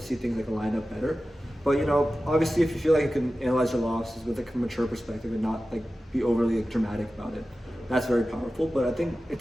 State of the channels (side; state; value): both; normal; correlation 0.95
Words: things like line up better. But obviously, if you feel like you can analyze your losses with like a mature perspective and not like be overly dramatic about it, that's very powerful. But I think it